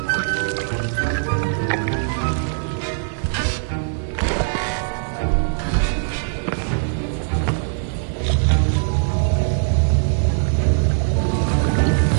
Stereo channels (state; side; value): silent; left; 63 dB below the other